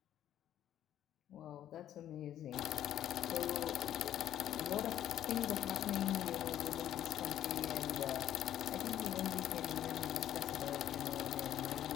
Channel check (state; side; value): quieter; right; 11.3 dB